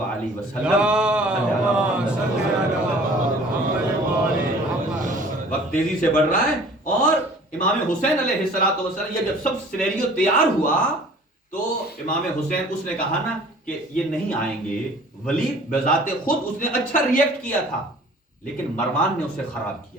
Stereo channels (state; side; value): normal; both; correlation 0.49